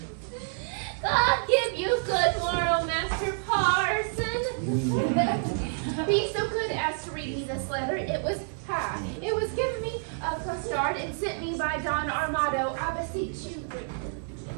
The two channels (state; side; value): silent; left; digital silence